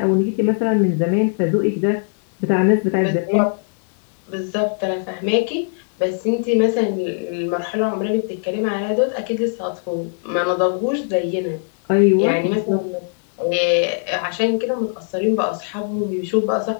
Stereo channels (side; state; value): right; silent; digital silence